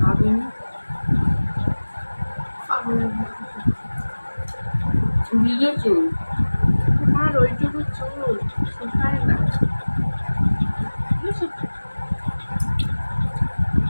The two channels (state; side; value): inverted; both; correlation -1.00